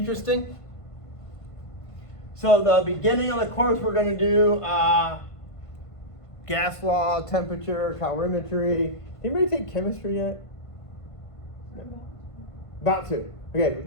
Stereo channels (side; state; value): right; late; 1.5 ms